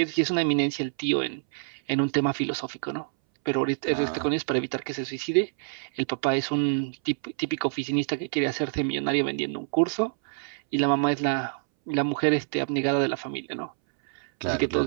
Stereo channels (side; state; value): left; silent; 60 dB below the other